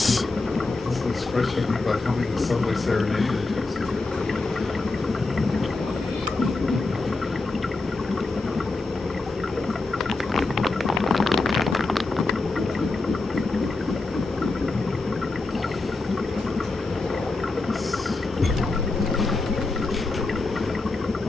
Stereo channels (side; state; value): right; quieter; 3.4 dB